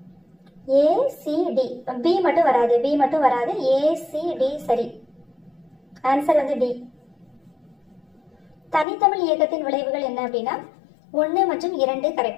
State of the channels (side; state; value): right; drops out; at 8.8 s